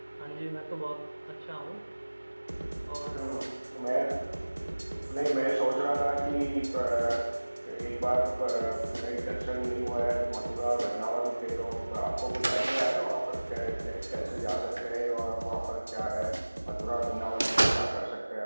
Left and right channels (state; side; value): inverted; both; correlation -1.00